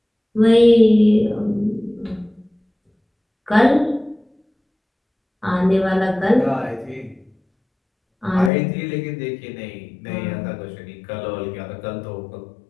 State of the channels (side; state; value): right; drops out; at 8.5 s